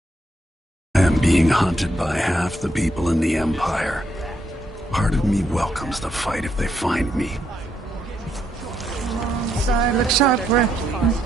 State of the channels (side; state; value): both; normal; correlation 0.77